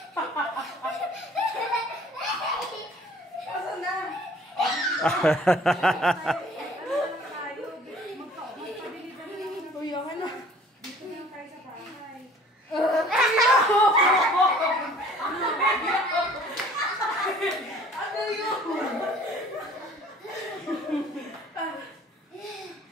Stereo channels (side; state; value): both; normal; correlation 0.52